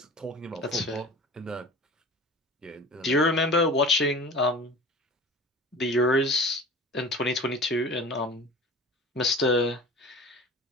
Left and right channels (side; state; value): both; normal; correlation 0.38